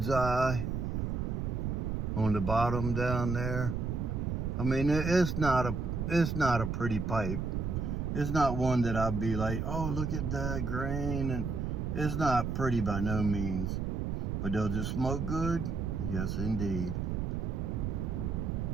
eye on the bottom down there. I mean, it's not a pretty pipe. It's not one that I'd be like, oh, look at that grain. And it's not pretty by no means. But does it smoke good? Yes, indeed.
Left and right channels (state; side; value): noise; right; rumble, 1 dB below the sound